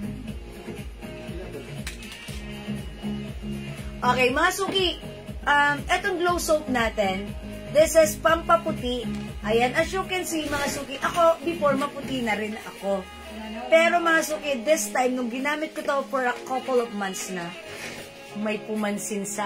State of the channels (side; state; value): both; identical; correlation 1.00